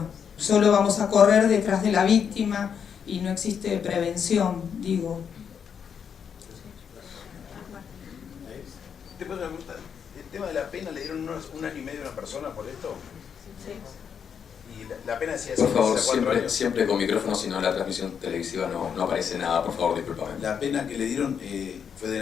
Solo vamos a correr detrás de la víctima y no existe prevención, digo. ¿El tema de la pena le dieron un año y medio a una persona por esto? Sí. Y la pena decía por favor, siempre con micrófono, si no la transmisión televisiva no aparece nada, por favor, discúlpame. La pena que le dieron fue de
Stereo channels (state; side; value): quieter; right; 7.4 dB